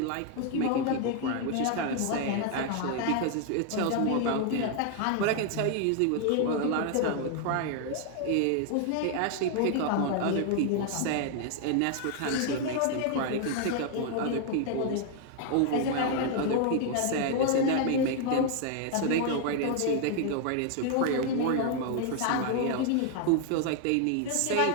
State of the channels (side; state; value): both; different; correlation 0.00